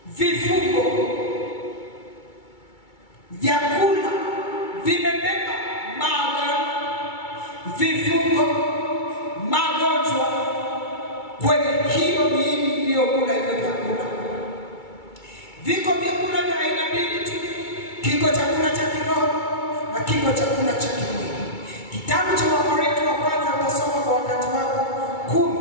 vifungo. Vyakula vimebeba maagano, vifungo, magonjwa kwenye hiyo miili iliyokula hivyo vyakula. Viko vyakula vya aina mbili tu. Kiko chakula cha kiroho na kiko chakula cha kimwili. Kitabu cha Wakorintho wa kwanza utasoma kwa wakati wako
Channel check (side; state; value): right; late; 2.3 ms